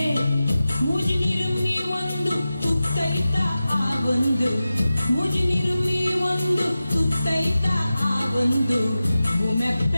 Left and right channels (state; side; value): inverted; both; correlation -0.94